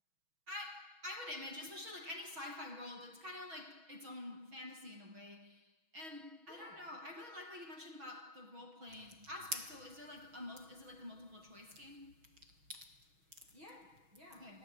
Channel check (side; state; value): left; late; 6.2 ms